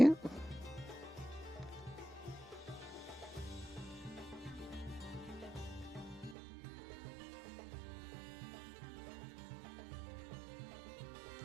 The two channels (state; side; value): drops out; left; at 6.4 s